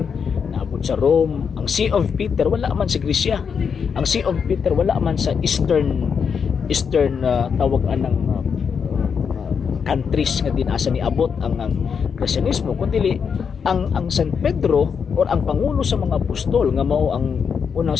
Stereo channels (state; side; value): quieter; right; 6.5 dB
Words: naabot sa Rome. Ang See of Peter wala man sa Grisya. Ang See of Peter wala man sa Eastern tawag anang countries nga dinasa ni abot ang Kristyanismo kundi ang San Pedro or ang pangulo sa mga apostol nga mao ang unang